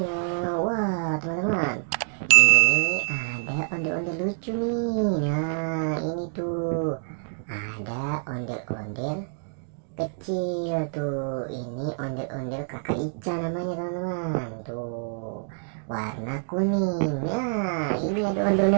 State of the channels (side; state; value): left; silent; digital silence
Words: Wah teman-teman, ini ada ondel-ondel lucu nih. Nah ini tuh ada ondel-ondel kecil tuh. Ini ondel-ondel kakak Ica namanya teman-teman. Tuh warna kuning. Nah ini ada